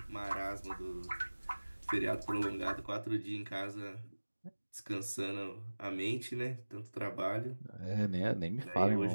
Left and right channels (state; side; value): inverted; both; correlation -1.00